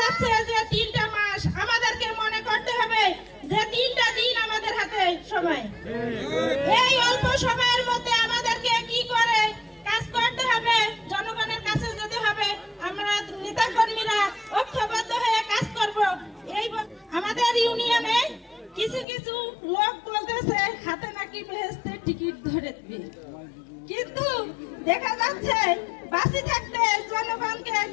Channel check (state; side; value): drops out; right; at 19.1 s